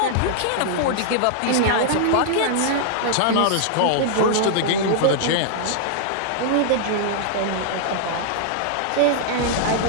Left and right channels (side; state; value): both; different; correlation -0.01